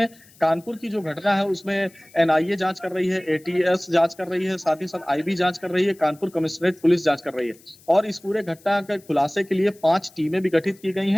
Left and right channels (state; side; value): noise; left; hiss, 27 dB below the sound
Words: कानपुर की जो घटना है उसमें एनआईए जांच कर रही है, एटीएस जांच कर रही है, साथ ही साथ आईबी जांच कर रही है, कानपुर कमिश्नरेट पुलिस जांच कर रही है और इस पूरे घटना के खुलासे के लिए 5 टीमें भी गठित की गई